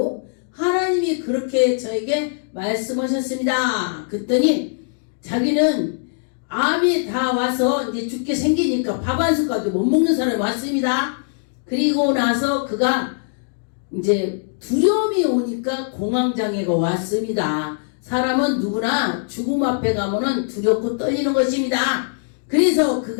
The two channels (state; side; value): silent; right; digital silence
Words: 하나님이 그렇게 저에게 말씀하셨습니다. 그랬더니 자기는 암이 다 와서 이제 죽게 생기니까 밥 한 숟갈도 못 먹는 사람이 왔습니다. 그리고 나서 그가 이제 두려움이 오니까 공황장애가 왔습니다. 사람은 누구나 죽음 앞에 가면은 두렵고 떨리는 것입니다. 그래서